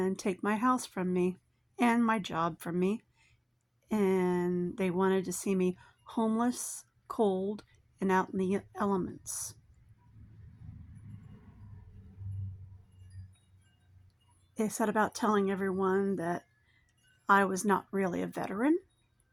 take my house from me and my job from me. And they wanted to see me homeless, cold, and out in the elements. They set about telling everyone that I was not really a veteran.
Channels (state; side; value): identical; both; correlation 1.00